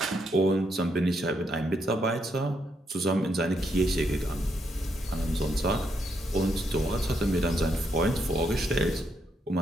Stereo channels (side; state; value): both; normal; correlation 0.78